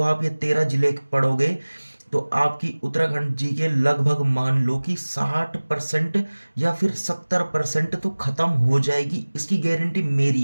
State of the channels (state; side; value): inverted; both; correlation -1.00